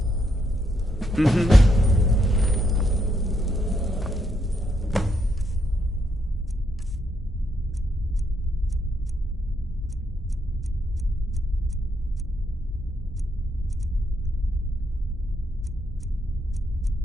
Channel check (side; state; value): both; normal; correlation 0.77